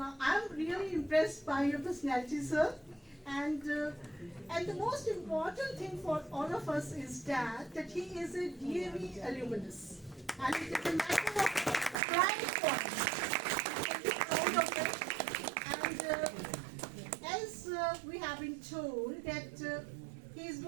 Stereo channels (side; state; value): left; drops out; at 12.0 s